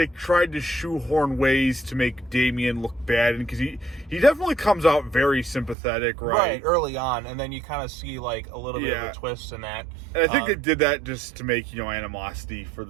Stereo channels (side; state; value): left; drops out; at 5.8 s